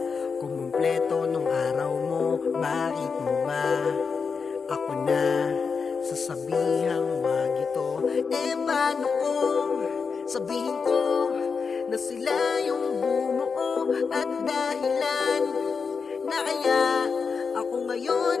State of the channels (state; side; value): quieter; right; 5.4 dB